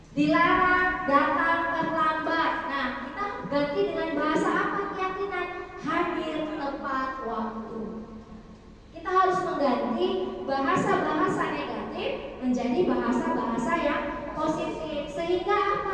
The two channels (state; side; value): identical; both; correlation 1.00